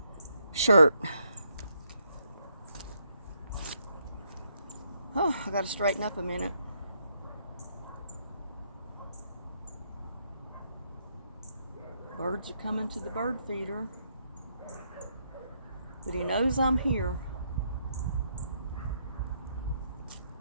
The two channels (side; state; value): both; inverted; correlation -0.75